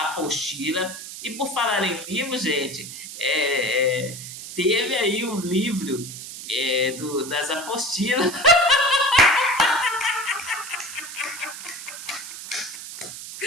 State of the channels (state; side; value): noise; right; hiss, 11 dB below the sound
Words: apostila. E por falar em livro, gente, teve aí um livro das apostilas.